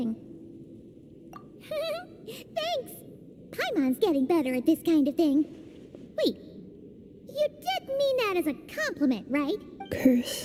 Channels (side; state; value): both; identical; correlation 1.00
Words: Thanks! Paimon's getting better at this kind of thing. Wait, you did mean that as a compliment, right?